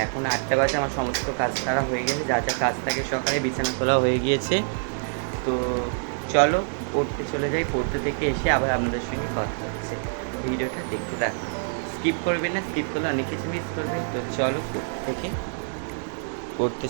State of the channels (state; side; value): silent; left; digital silence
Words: এখন 8টা বাজে। আমার সমস্ত কাজ তারা হয়ে গেছে, যা যা কাজ থাকে সকালে বিছানা তোলা হয়ে গিয়েছে। তো চলো পড়তে চলে যাই, পড়তে থেকে এসে আবার আপনাদের সঙ্গে কথা হচ্ছে। ভিডিওটা দেখতে থাকুন, স্কিপ করবেন না, স্কিপ করলে অনেক কিছু মিস করবেন। তো চলো পড়তে